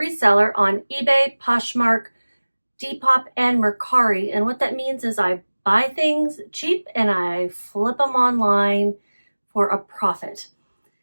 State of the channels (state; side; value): inverted; both; correlation -1.00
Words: on eBay, Poshmark, Depop, and Mercari. And what that means is I buy things cheap and I flip them online for a profit.